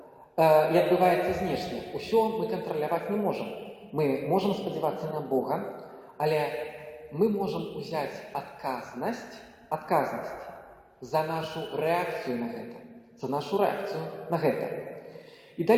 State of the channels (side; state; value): both; identical; correlation 1.00